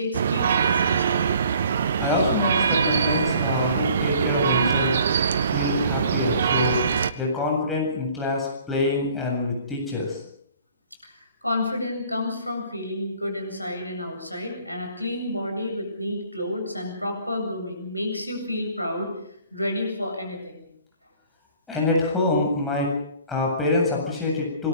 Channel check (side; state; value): both; inverted; correlation -0.54